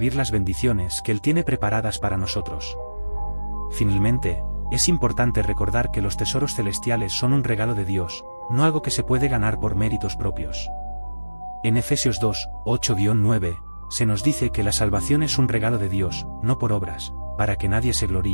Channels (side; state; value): both; inverted; correlation -1.00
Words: las bendiciones que Él tiene preparadas para nosotros. Finalmente, es importante recordar que los tesoros celestiales son un regalo de Dios, no algo que se puede ganar por méritos propios. En Efesios 2, 8-9, se nos dice que la salvación es un regalo de Dios, no por obras, para que nadie se